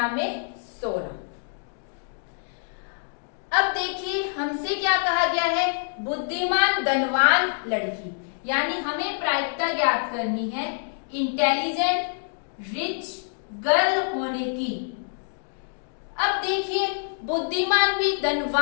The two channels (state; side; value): silent; right; digital silence